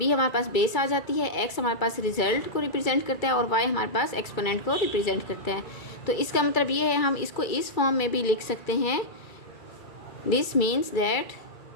हमारे पास बेस आ जाती है, x हमारे पास रिजल्ट को रिप्रेजेंट करता है और y हमारे पास एक्सपोनेंट को रिप्रेजेंट करता है। तो इसका मतलब ये है हम इसको इस फॉर्म में भी लिख सकते हैं। दिस मीन्स दैट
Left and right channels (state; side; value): late; right; 2.3 ms